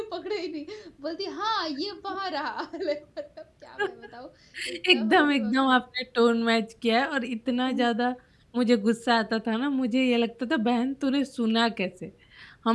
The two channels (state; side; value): identical; both; correlation 1.00